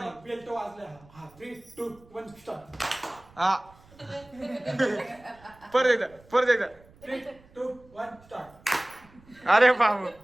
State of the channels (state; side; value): noise; right; rumble, 26 dB below the sound